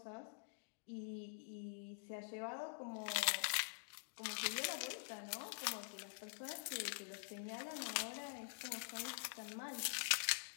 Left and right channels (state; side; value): silent; right; digital silence